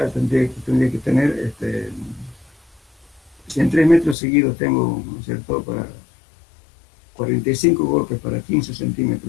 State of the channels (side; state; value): right; drops out; at 4.2 s